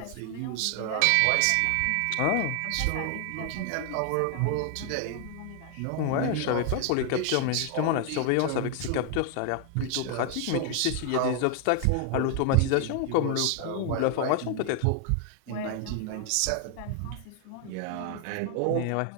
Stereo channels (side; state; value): both; different; correlation 0.00